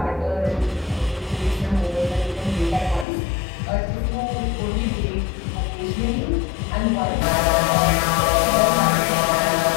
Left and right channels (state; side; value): drops out; right; at 3.1 s